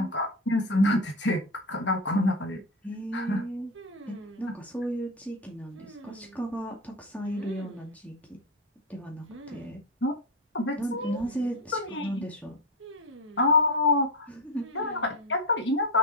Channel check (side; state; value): both; normal; correlation 0.13